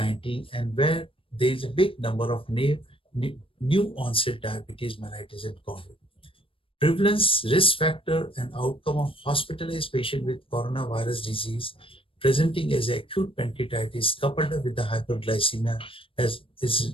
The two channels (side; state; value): right; late; 0.26 ms